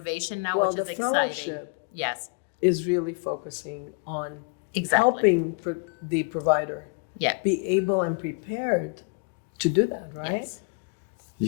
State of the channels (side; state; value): right; quieter; 33.3 dB